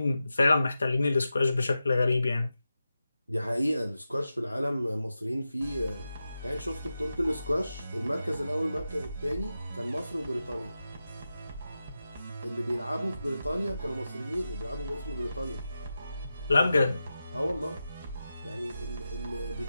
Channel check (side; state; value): both; inverted; correlation -0.91